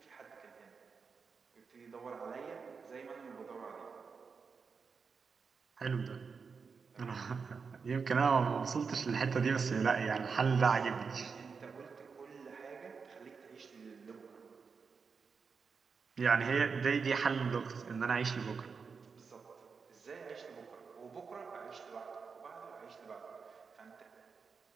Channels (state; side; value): quieter; left; 5.4 dB